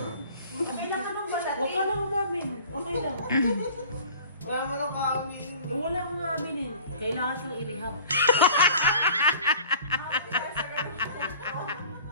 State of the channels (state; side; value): inverted; both; correlation -0.46